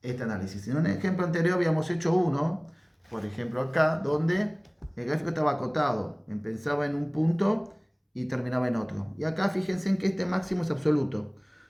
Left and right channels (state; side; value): identical; both; correlation 1.00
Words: este análisis. En un ejemplo anterior habíamos hecho uno, por ejemplo acá, donde el gráfico estaba acotado. Empezaba en un punto y terminaba en otro. Y acá fíjense en que este máximo es absoluto,